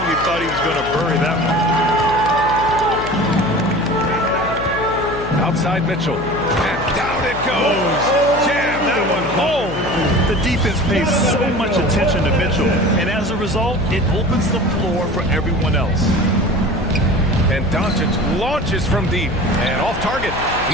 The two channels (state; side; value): noise; left; hum, 9 dB below the sound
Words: thought he was going to bury that one. Outside Mitchell. And down it goes. Jam that one home. The defense pays so much attention to Mitchell. And as a result, it opens the floor for everyone else. And Doncic launches from deep and off target.